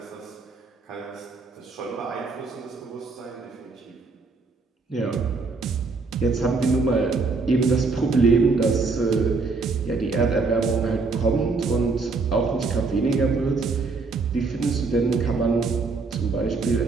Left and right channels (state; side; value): quieter; left; 4.1 dB